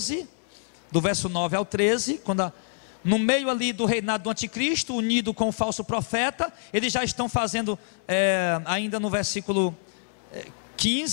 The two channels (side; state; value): right; silent; 61 dB below the other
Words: do verso 9 ao 13, quando no meio ali do reinado do anticristo, unido com o falso profeta. Eles já estão fazendo, ainda no versículo